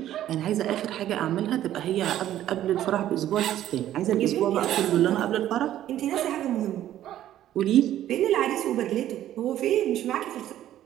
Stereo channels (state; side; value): quieter; left; 12.4 dB